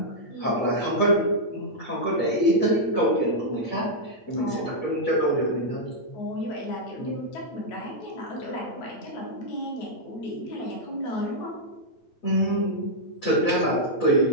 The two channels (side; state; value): right; late; 8.8 ms